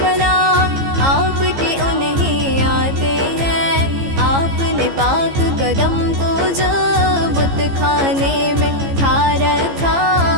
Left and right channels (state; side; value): late; left; 15 ms